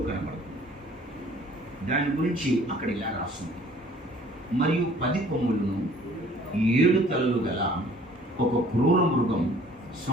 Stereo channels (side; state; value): both; normal; correlation 0.54